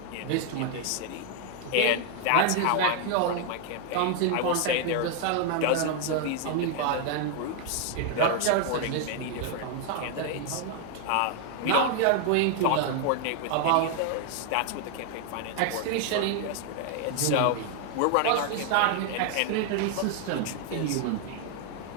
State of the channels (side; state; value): both; different; correlation 0.00